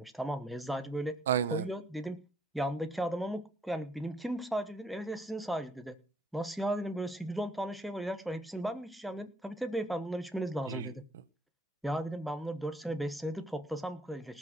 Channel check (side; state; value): both; normal; correlation 0.66